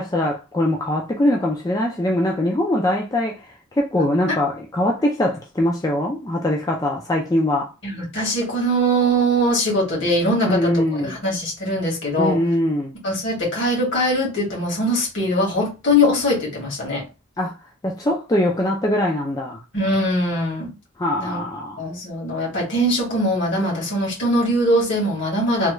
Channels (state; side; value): normal; both; correlation 0.46